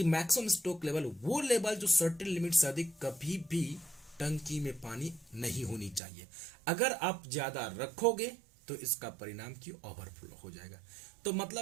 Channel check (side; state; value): left; drops out; at 6.0 s